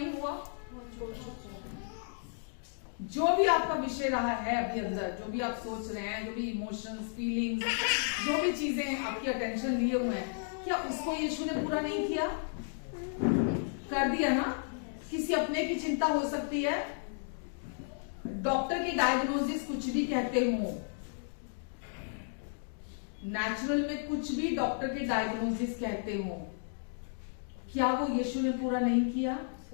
हुआ? जो भी आपका विषय रहा है अभी अंदर, जो भी आप सोच रहे हैं, जो भी इमोशंस, फीलिंग्स, जो भी चीजें आपकी अटेंशन लिए हुए हैं, क्या उसको यीशु ने पूरा नहीं किया? कर दिया ना। किसी अपने की चिंता हो सकती है, डॉक्टर की डायग्नोसिस कुछ भी कहते हो, नेचुरल में कुछ भी डॉक्टर के डायग्नोसिस कहते हो, क्या वो यीशु ने पूरा नहीं किया?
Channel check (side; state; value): right; silent; digital silence